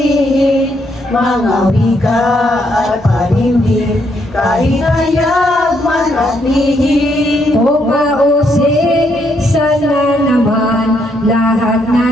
Mga wika at panimdim, kahit hayag man at lihim. Kung mausik, sana naman lahat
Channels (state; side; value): normal; both; correlation 0.74